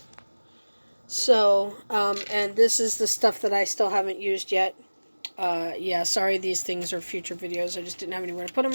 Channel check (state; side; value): inverted; both; correlation -1.00